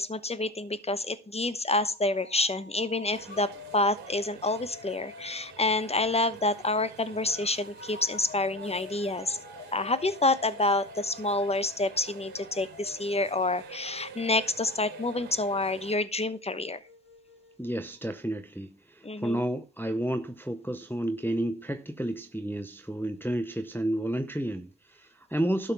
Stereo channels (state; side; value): normal; both; correlation 0.39